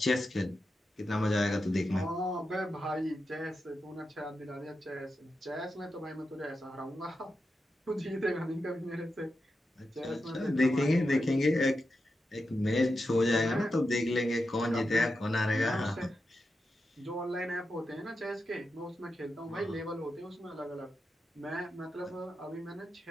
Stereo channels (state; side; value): normal; both; correlation 0.88